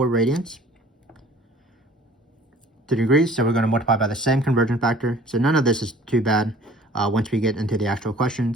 radians to degrees. So we're going to multiply by the same conversion factor. So none of this is too bad once we get into the actual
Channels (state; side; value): normal; both; correlation 0.51